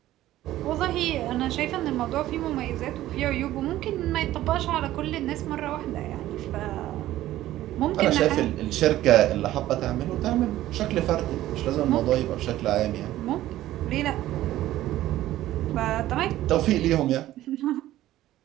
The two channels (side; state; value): left; quieter; 14.5 dB